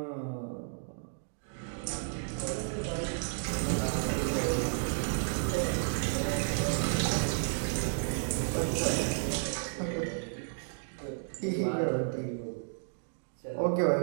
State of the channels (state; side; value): silent; left; digital silence